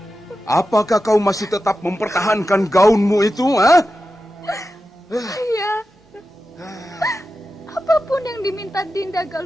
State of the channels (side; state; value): both; normal; correlation 0.92